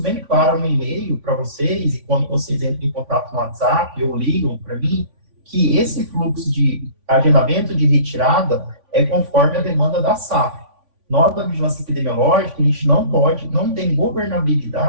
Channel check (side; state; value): left; late; 3.5 ms